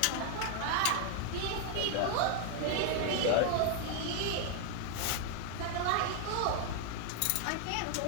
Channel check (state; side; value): different; both; correlation 0.00